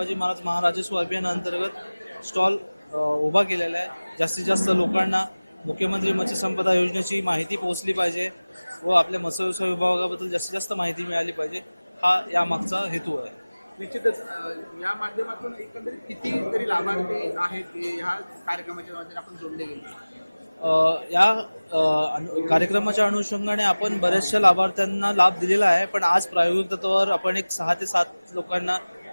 महाराज महाराजस्व अभियानाअंतर्गत स्टॉल उभा केलेला आहे. जास्तीत जास्त लोकांना मुख्यमंत्री मत्स्य संपदा योजनेची माहिती पोहोचली पाहिजे व आपल्या मत्स्य व्यवसाय विभागाबद्दल जास्तीत जास्त माहिती मिळाली पाहिजे, हा यामागचा हेतू आहे. निश्चितच या माध्यमातून एकंदरीत किती तरी लाभार्थी आहेत की ह्या कार्यक्रमाच्या माध्यमातून आपण जोडले गेले? या कार्यक्रमाच्या अनुषंगाने आपण बऱ्याचशा लाभार्थ्यांना लाभ दिलेला आहे, पण आज प्रायोगिक तत्वावर आपण एक 6 ते 7 लोकांना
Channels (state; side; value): inverted; both; correlation -0.99